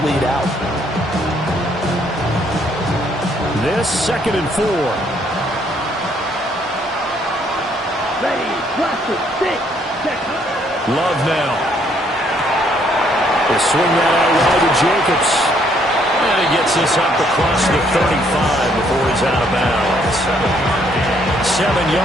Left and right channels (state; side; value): normal; both; correlation 0.68